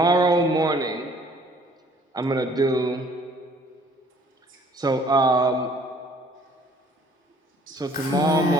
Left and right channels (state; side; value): normal; both; correlation 0.57